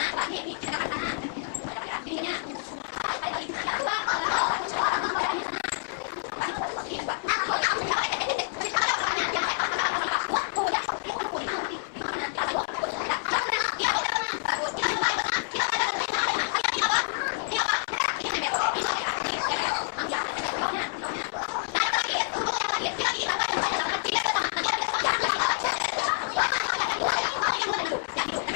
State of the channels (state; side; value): silent; right; 58 dB below the other